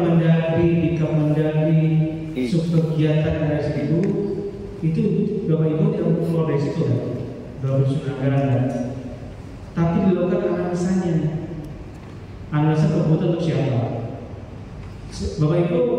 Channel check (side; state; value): both; identical; correlation 1.00